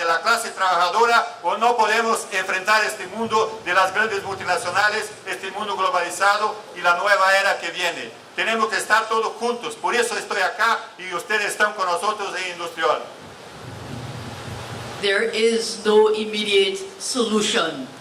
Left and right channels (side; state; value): both; identical; correlation 1.00